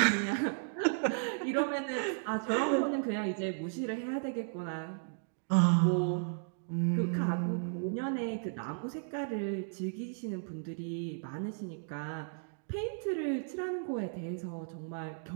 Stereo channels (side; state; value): left; silent; digital silence